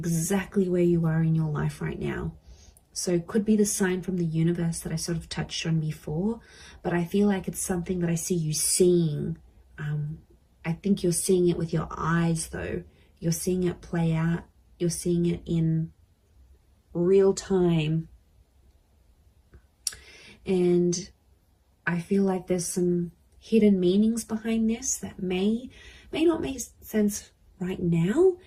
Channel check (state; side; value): identical; both; correlation 1.00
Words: where you are in your life right now. So it could be the sign from the universe that I sort of touched on before, but I feel like it's something that I see you seeing. I think you're seeing it with your eyes though. You're seeing it play out. You're seeing it in real time. And I feel like there's some hidden meanings behind this that may not make sense right now,